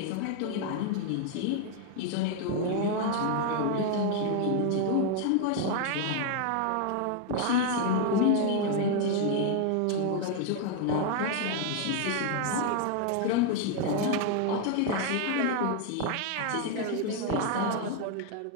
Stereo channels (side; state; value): both; different; correlation 0.00